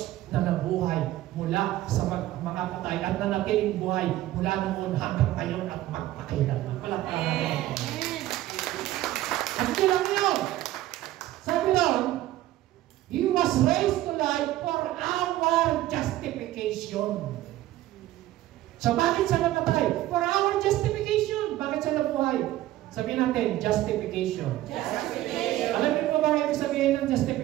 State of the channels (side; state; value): left; quieter; 15.1 dB